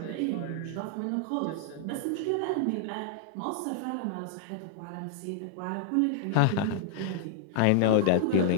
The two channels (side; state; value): both; different; correlation -0.01